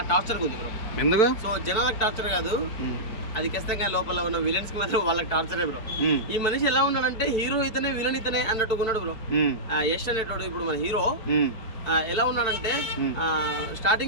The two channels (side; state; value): right; late; 4.6 ms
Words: టార్చర్గా ఉంది బ్రో. ఎందుకు? సో జనాలకు టార్చర్ కాదు, అది ఖచ్చితంగా లోపల ఉన్న విలన్స్ కి మాత్రం వాళ్ళకి టార్చరే బ్రో. ఈ మనిషి ఎలా ఉన్నాడంటే హీరో ఇతనే విలన్ ఇతనే అన్నట్టుగా ఉన్నాడు బ్రో. యష్ అనేటోడు ఇప్పుడు మన హీరో ఎలా ఉన్నాడంటే